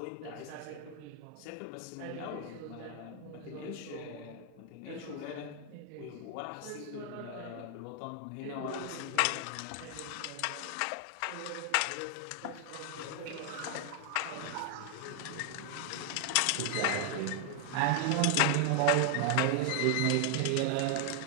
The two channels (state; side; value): different; both; correlation 0.00